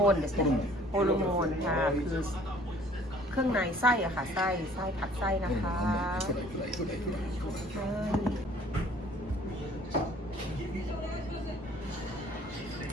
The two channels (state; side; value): normal; both; correlation 0.54